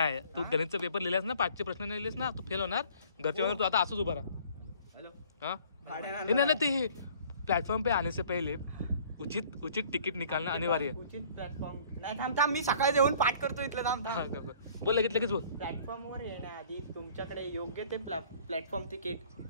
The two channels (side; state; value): both; inverted; correlation -0.53